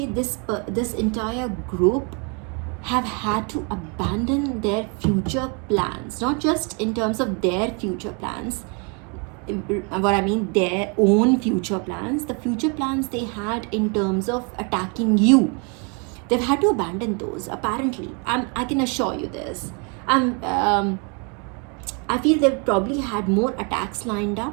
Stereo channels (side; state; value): left; quieter; 35.1 dB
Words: this entire group have had to abandon their future plans, not just in terms of their future plans, what I mean, their own future plans, the future plans they had in terms of attacking you. They've had to abandon those, apparently. I can assure you this. I feel they've probably had more attacks lined